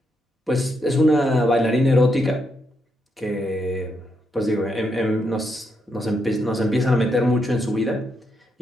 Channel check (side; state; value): both; normal; correlation 0.80